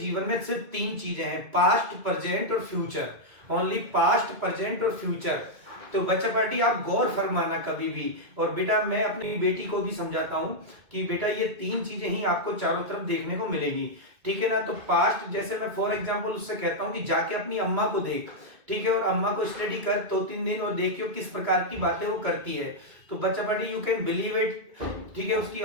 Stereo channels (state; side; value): late; left; 2.1 ms